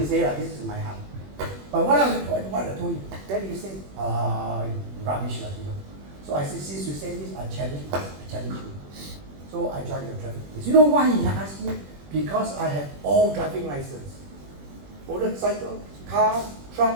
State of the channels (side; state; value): left; late; 21 ms